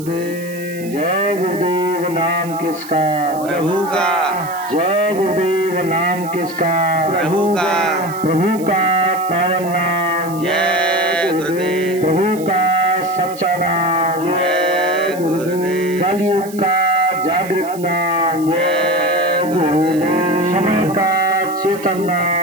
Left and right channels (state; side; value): noise; right; hiss, 17 dB below the sound